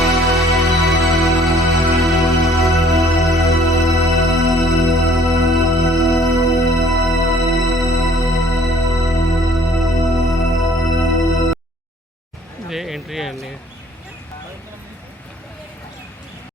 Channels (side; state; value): both; normal; correlation 0.57